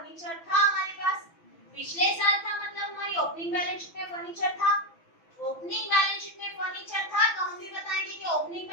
था हमारे पास, पिछले साल था मतलब हमारी ओपनिंग बैलेंस शीट में फर्नीचर था। ओपनिंग बैलेंस शीट में फर्नीचर था तो हम भी बताएंगे कि ओपनिंग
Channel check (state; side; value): late; right; 6.0 ms